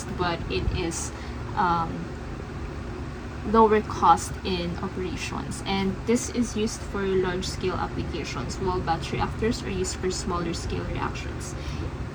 but it is lower cost in operations, and this is used for large scale applications, while batch reactors are used for smaller scale reactions.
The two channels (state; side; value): identical; both; correlation 1.00